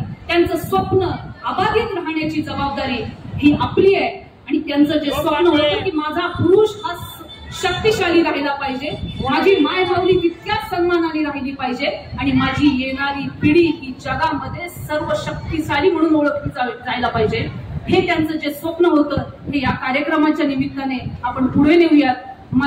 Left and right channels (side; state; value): both; identical; correlation 1.00